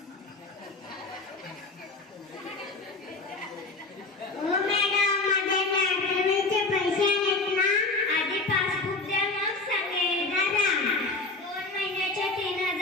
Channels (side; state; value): right; quieter; 3.4 dB